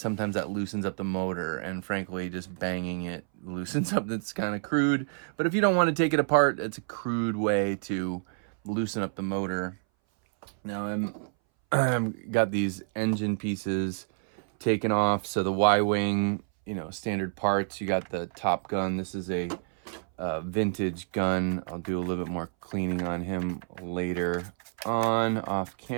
that loosens up the motor, and frankly just banging it loosens up. That's kind of crude, but if you don't want to take it apart, it's a crude way to loosen up the motor. Now I'm got these engine pieces taken off, so the Y-wing, you know, standard parts. You got the Top Gun. This is a vintage gun. I'll do a little bit more cleaning on him later on off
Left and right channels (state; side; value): silent; left; 59 dB below the other